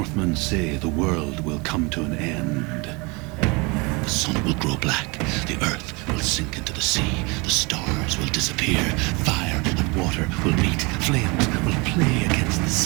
say the world will come to an end. The sun will grow black, the earth will sink into the sea, the stars will disappear, fire and water will meet, flames will play against the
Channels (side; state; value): left; quieter; 27.7 dB